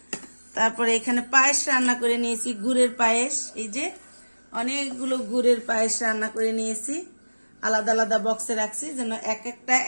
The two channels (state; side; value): inverted; both; correlation -1.00